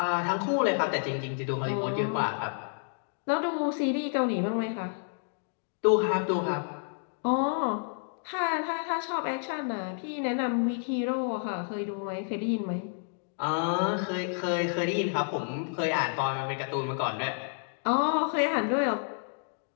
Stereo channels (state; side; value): silent; right; 58 dB below the other